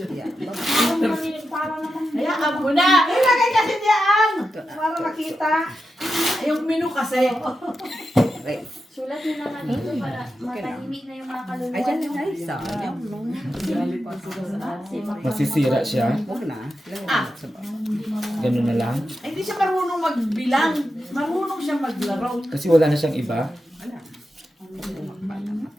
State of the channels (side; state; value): both; normal; correlation 0.89